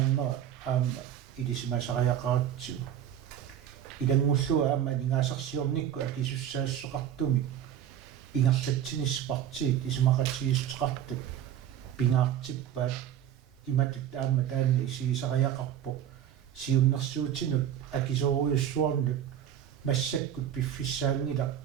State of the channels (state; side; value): quieter; left; 10.2 dB